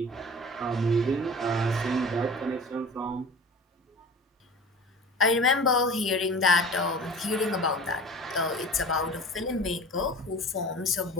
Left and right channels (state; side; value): normal; both; correlation 0.38